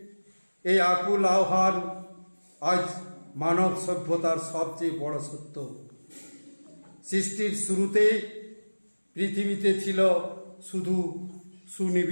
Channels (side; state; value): both; inverted; correlation -1.00